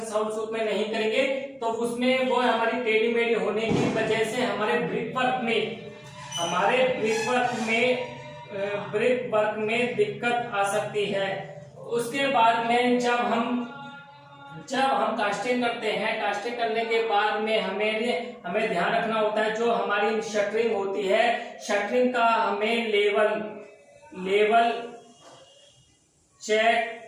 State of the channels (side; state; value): both; identical; correlation 1.00